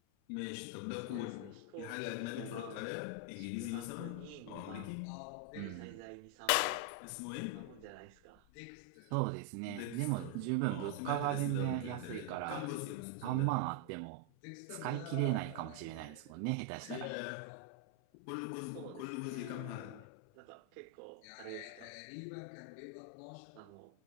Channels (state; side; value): different; both; correlation 0.00